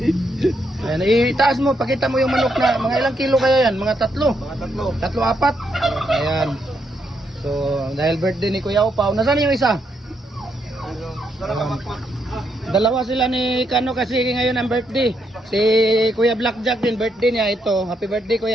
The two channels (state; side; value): normal; both; correlation 0.77